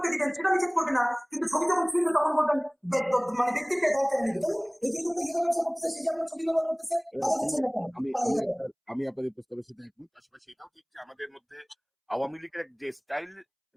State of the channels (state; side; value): identical; both; correlation 1.00